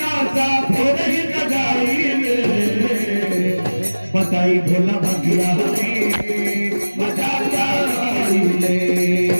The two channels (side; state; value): both; inverted; correlation -1.00